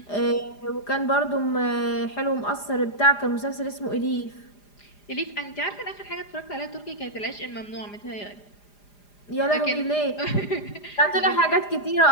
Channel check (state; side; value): late; right; 4.9 ms